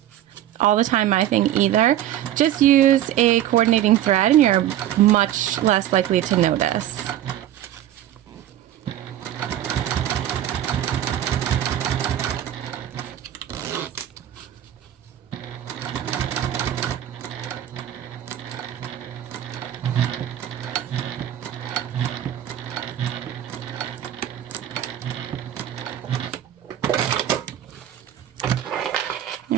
all the time my thing either. Just use a coordinating thread and you're much less likely to notice.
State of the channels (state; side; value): quieter; left; 11.8 dB